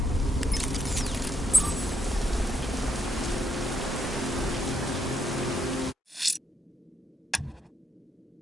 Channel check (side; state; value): both; normal; correlation 0.77